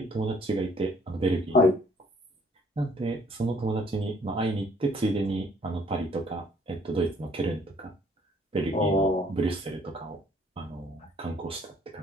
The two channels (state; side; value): normal; both; correlation 0.62